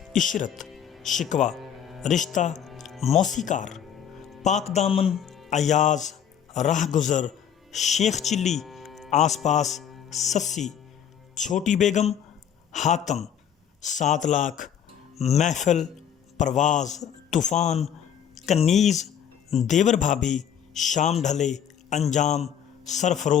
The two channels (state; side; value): quieter; right; 8.8 dB